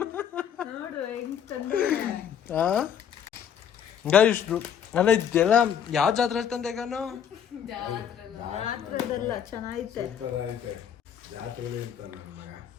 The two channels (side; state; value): right; quieter; 8.6 dB